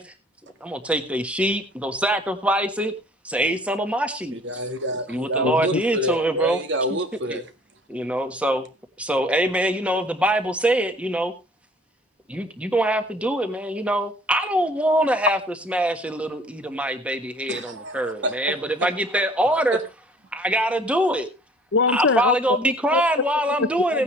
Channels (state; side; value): normal; both; correlation 0.54